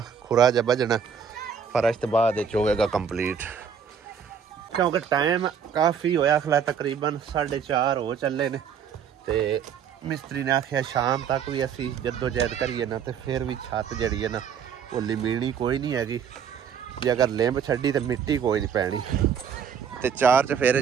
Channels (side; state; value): left; quieter; 7.3 dB